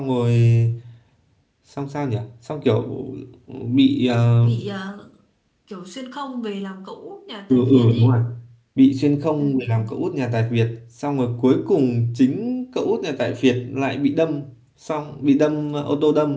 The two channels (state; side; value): identical; both; correlation 1.00